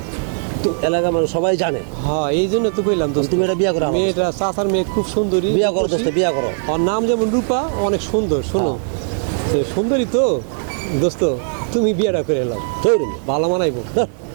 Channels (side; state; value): left; silent; digital silence